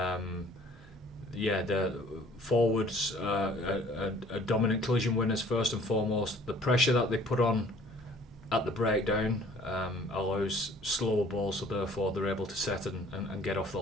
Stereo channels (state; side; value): normal; both; correlation 0.54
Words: The forwards are dominant collision winners first and foremost. The pressure that they put on at the breakdown allows slower balls, so therefore they're able to set and get off the